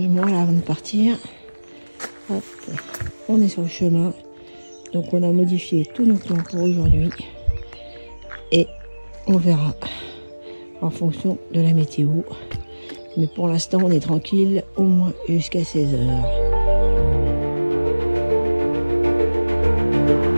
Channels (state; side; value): inverted; both; correlation -1.00